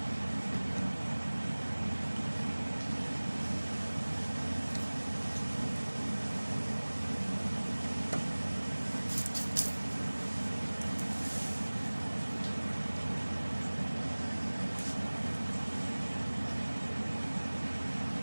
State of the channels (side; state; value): both; inverted; correlation -1.00